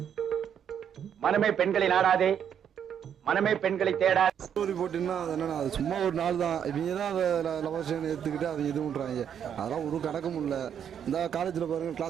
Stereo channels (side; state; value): left; quieter; 8.6 dB